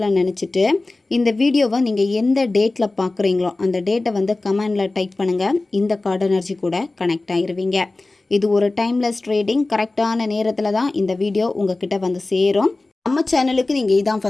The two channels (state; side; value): quieter; right; 3.1 dB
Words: நினச்சிட்டு இந்த வீடியோவை நீங்கள் எந்த டேட்டில் பார்க்குறீங்களோ அந்த டேட்டை வந்து கமெண்டில் டைப் பண்ணுங்கள். இந்த கார்டு எனர்ஜி கூட கனெக்ட் ஆகிருவீங்க. இது ஒரு டைம்லெஸ் ட்ரேடிங். கரெக்டான நேரத்தில் தான் இந்த வீடியோ உங்ககிட்ட வந்து சேரும். நம்ம சேனலுக்கு நீங்கள் இதான்